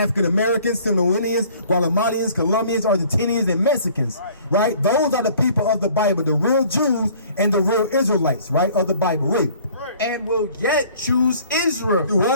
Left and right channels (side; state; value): both; inverted; correlation -0.53